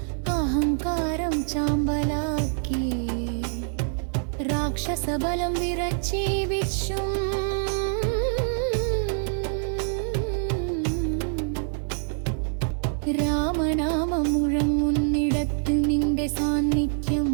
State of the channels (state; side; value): silent; left; digital silence